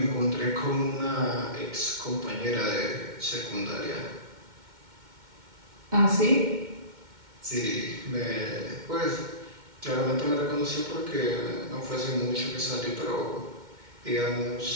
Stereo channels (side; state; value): left; late; 2.1 ms